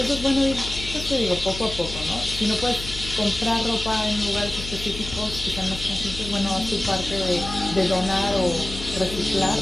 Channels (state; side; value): noise; left; hum, 9 dB below the sound